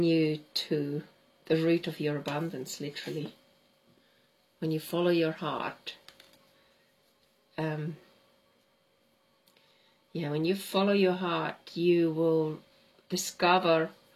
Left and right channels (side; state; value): both; identical; correlation 1.00